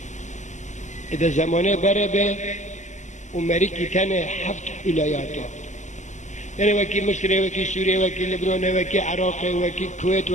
اذا زمانه بره به امریکی تنه 7 ولایت یعنی وکی مصر وکی سوریه وکی لبنان وکی عراق وکی کویت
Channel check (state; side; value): late; right; 0.34 ms